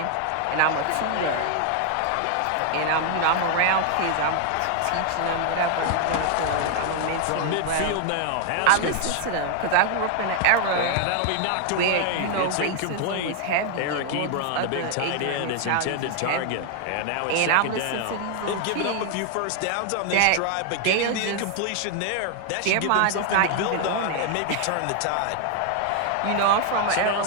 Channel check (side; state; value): both; different; correlation 0.00